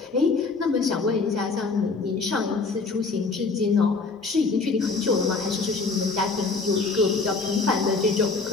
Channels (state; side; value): quieter; right; 4.1 dB